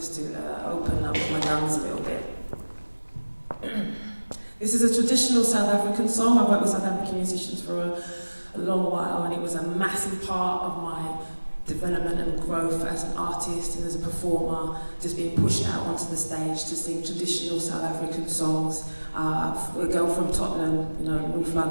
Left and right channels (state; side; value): inverted; both; correlation -1.00